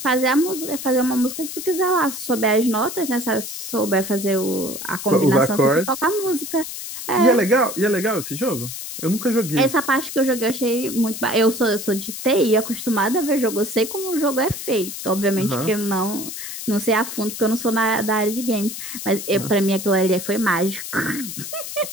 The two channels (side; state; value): left; noise; hiss, 8 dB below the sound